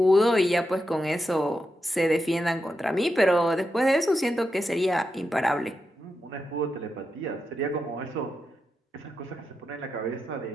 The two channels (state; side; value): normal; both; correlation 0.87